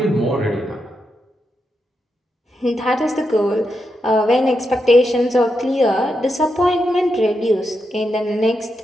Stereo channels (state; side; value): normal; both; correlation 0.85